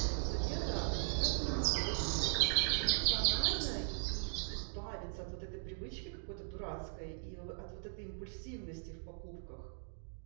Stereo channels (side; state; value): left; silent; digital silence